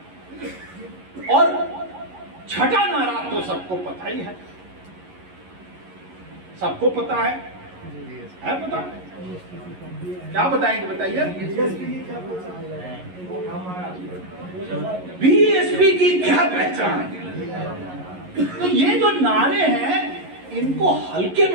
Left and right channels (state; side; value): late; left; 11 ms